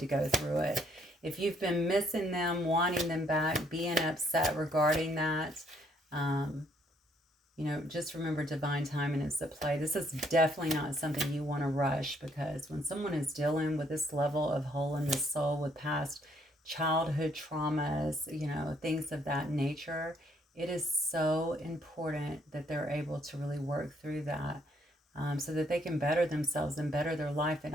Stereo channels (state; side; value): normal; both; correlation 0.68